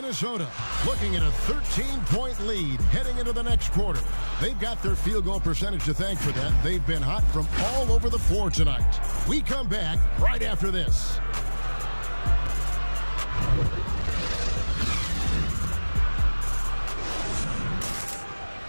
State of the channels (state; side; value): inverted; both; correlation -1.00